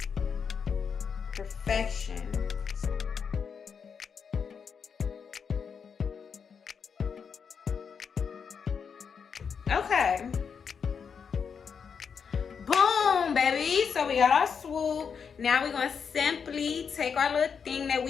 perfection. Okay. Boom, baby. So we got our swoop. Now we're gonna simply take our little thing that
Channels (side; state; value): right; quieter; 6.4 dB